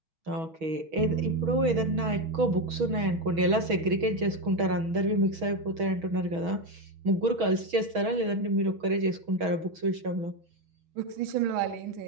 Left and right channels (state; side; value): late; left; 6.2 ms